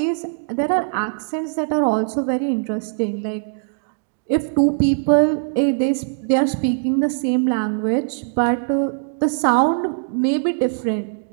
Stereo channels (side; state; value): left; silent; digital silence